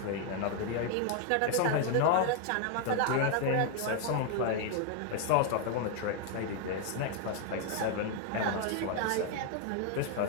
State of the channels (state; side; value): different; both; correlation 0.00